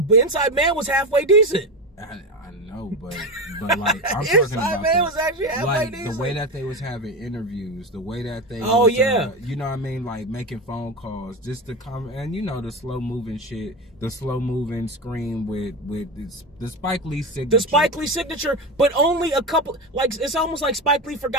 Inside Man was halfway decent. I know, but like I'm talking Inside about Man was actually halfway decent. The way that they was having interviews, the way that they you know what I mean, like making phone calls, just the and you know the slow moving shit, the slow moving screen with the Spike Lee signature. The Spike Lee signature, but only a couple. Like it's almost like Spike Lee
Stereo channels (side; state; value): both; normal; correlation 0.19